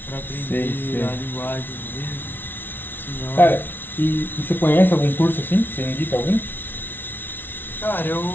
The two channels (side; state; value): right; late; 0.10 ms